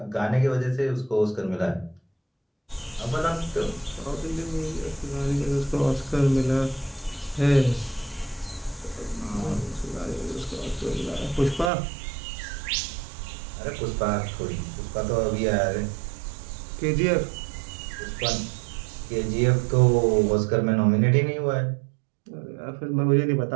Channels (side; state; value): left; drops out; at 11.7 s